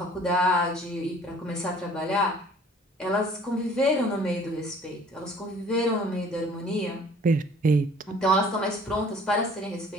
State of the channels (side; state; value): both; normal; correlation 0.52